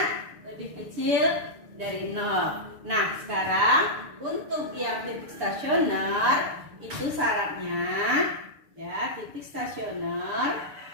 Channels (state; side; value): late; left; 6.9 ms